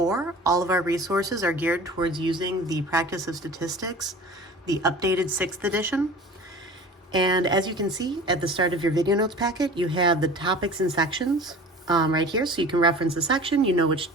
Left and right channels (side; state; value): both; normal; correlation 0.40